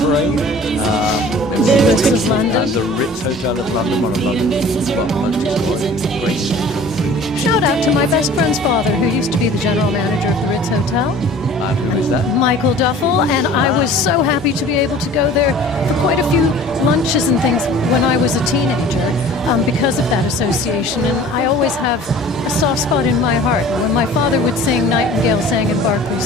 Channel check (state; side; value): normal; both; correlation 0.45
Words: parade. The Ritz of London. And the Ritz Hotel of London, one of London's multi-story, great. Shout out to my best friend's father, who used to be the general manager of the Ritz Hotel, And who is that? Michael Duffel, and I was so happy to be able to go there for quite a few lunches and things when I was a teenager because of that association, and I always have a soft spot in my heart. When my father would sing Nightingale Sang in Berkeley